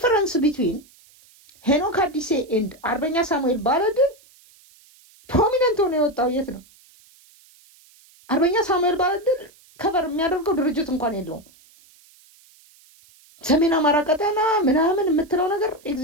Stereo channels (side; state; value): right; noise; hiss, 28 dB below the sound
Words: ቢትዊን ሄኖክ አዲሴ ኤንድ አርበኛ ሳሙኤል ባለድል ፕሮሚነንት ሆኖ የወጣው የት ነው? አርበኛ ሳሙኤል ባለድል ከቨር የሚያደርገው ድርጅት እንኳን የለውም። ሰሜን አማራ ቀጠና ምናምን የምትለው ነገር